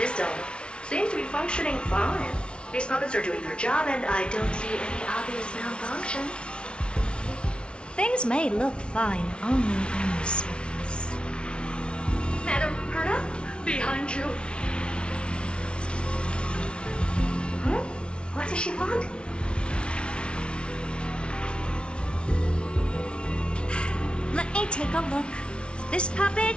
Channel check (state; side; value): late; right; 0.058 ms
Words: zone seems to be functioning fine. These puppets are doing their job, and I don't see any obvious malfunction. Things may look fine only on the surface. Madam Herta, behind you. Huh? What does she want? Let me take a look. This